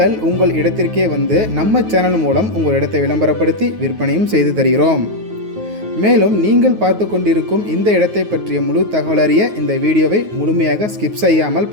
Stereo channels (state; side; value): late; left; 9.4 ms